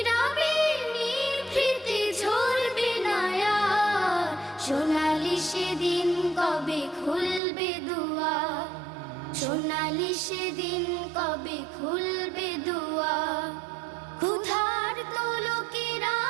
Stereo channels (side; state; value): left; drops out; at 7.4 s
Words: নিভৃতে ঝরবে না আর। সোনালি সেদিন কবে খুলবে দুয়ার, সোনালি সেদিন কবে খুলবে দুয়ার। ক্ষুধার্ত লোকেরা